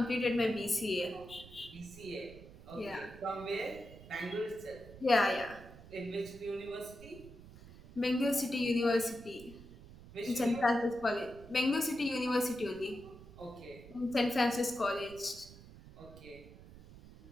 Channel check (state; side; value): noise; right; rumble, 18 dB below the sound